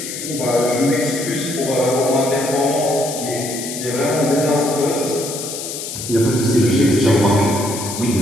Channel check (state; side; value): noise; left; hiss, 7 dB below the sound